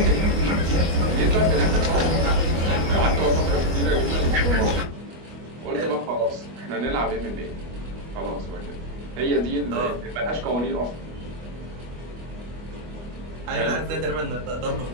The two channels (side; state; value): left; late; 25 ms